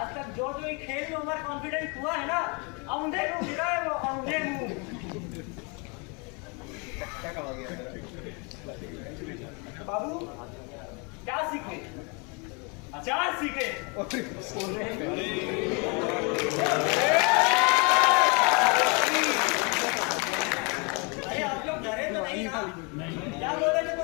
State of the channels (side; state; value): right; quieter; 32.4 dB